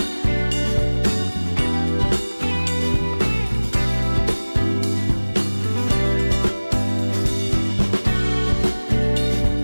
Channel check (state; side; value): inverted; both; correlation -1.00